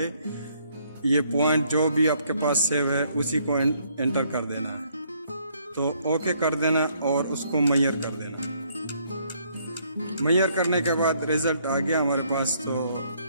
ये पॉइंट जो भी आपके पास सेव है उसी को एंटर कर देना है। तो ओके कर देना और उसको मेजर कर देना। मेजर करने के बाद रिजल्ट आ गया हमारे पास। तो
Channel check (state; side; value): inverted; both; correlation -0.67